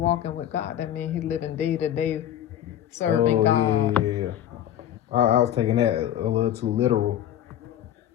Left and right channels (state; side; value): quieter; right; 11.1 dB